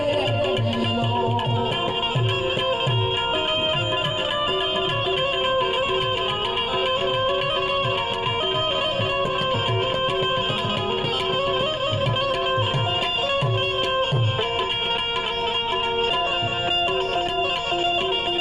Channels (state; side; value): noise; left; rumble, 13 dB below the sound